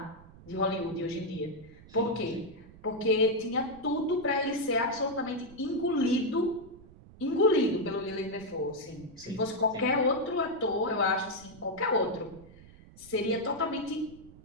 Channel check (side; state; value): right; noise; rumble, 21 dB below the sound